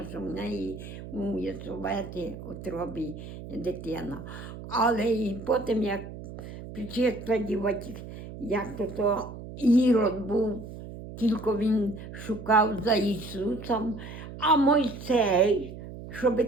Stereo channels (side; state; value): right; noise; hum, 12 dB below the sound